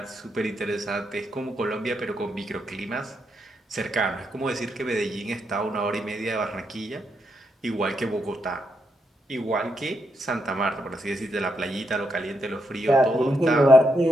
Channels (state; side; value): normal; both; correlation 0.80